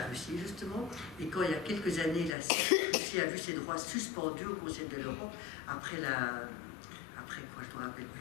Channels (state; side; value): drops out; right; at 2.4 s